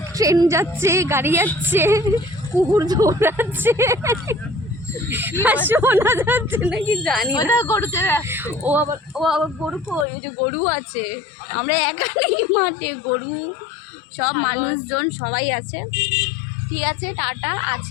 ট্রেন যাচ্ছে, গাড়ি যাচ্ছে, কুকুর দৌড়াচ্ছে, আর শোনা যাচ্ছে নাকি জানি না। ও আবার গরু, ওই যে গরু আছে, আমরা একা নেই মাঠে, গরু সব মানুষজন সবাই আছে। ঠিক আছে, টাটা,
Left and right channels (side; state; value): right; drops out; at 10.1 s